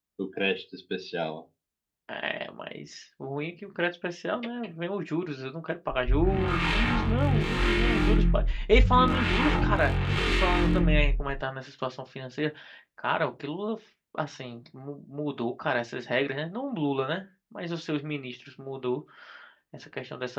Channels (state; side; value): identical; both; correlation 1.00